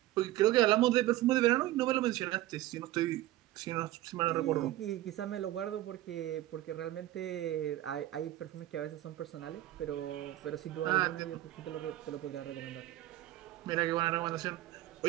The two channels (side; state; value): left; quieter; 15.4 dB